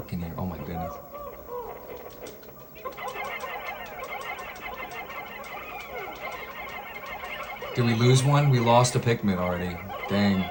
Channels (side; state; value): both; identical; correlation 1.00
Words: in here. Oh my goodness. Did we lose one? We lost a Pikmin already. Dang.